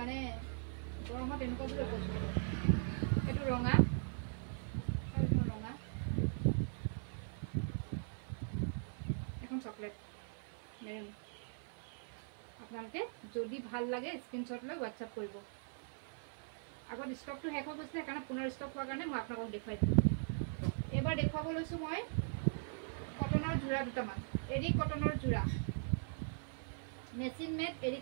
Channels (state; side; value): silent; left; 51 dB below the other